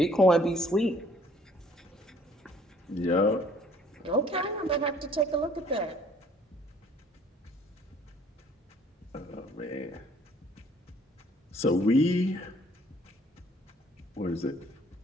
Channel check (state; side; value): normal; both; correlation 0.59